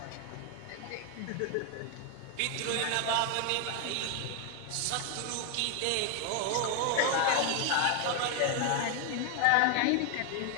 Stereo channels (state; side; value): different; both; correlation 0.01